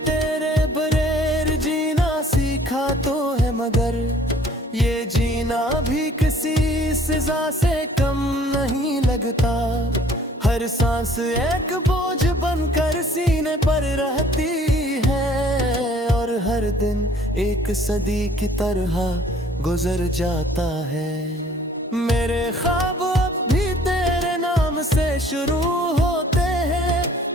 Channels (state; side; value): normal; both; correlation 0.55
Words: तेरे बगैर जीना सीखा तो है, मगर ये जीना भी किसी सजा से कम नहीं लगता। हर सांस एक बोझ बनकर सीने पर रहती है, और हर दिन एक सदी की तरह गुजर जाता है। मेरे ख्वाब अब भी तेरे नाम से शुरू होते हैं,